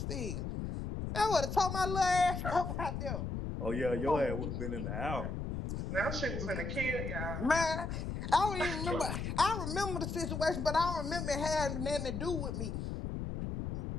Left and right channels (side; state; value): left; noise; rumble, 4 dB below the sound